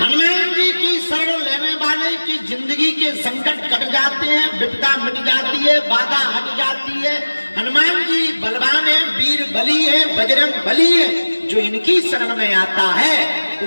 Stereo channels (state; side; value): inverted; both; correlation -1.00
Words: हनुमान जी की शरण लेने वाले की जिंदगी के संकट कट जाते हैं, विपदा मिट जाती है, बाधा हट जाती है। हनुमान जी बलवान है, वीर बली है, बजरंग बली है। जो इनकी शरण में आता है